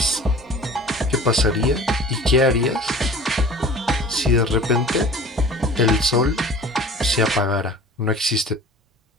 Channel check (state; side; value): normal; both; correlation 0.43